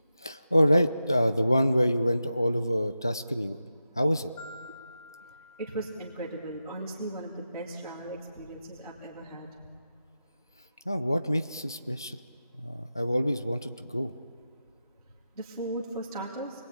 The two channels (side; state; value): both; inverted; correlation -0.90